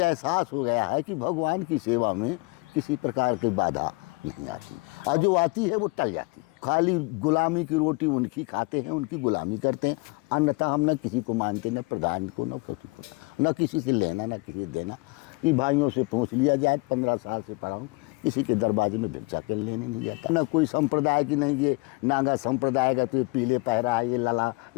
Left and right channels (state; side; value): quieter; right; 26.8 dB